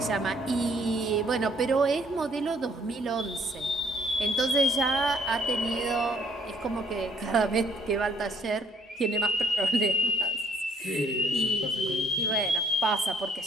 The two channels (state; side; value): normal; both; correlation 0.64